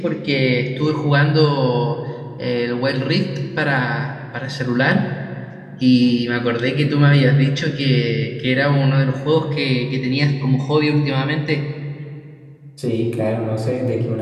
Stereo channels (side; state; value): both; identical; correlation 1.00